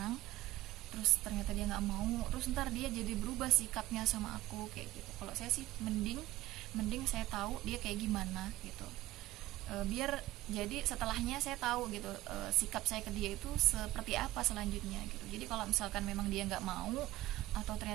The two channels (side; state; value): left; quieter; 16.8 dB